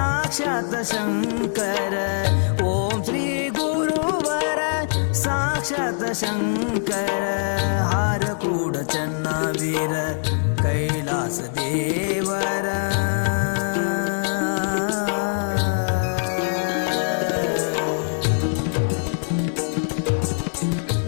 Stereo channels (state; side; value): silent; right; digital silence